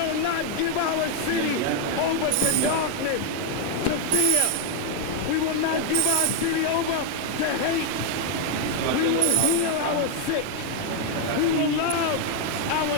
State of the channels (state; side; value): different; both; correlation 0.00